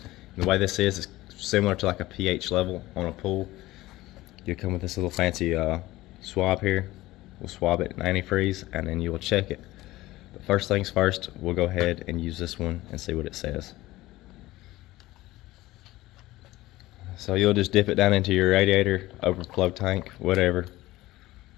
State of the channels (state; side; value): quieter; right; 17.7 dB